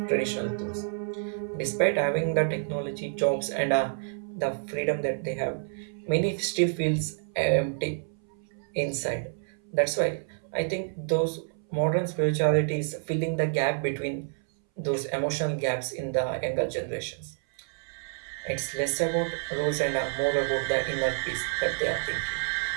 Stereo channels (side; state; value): left; silent; 59 dB below the other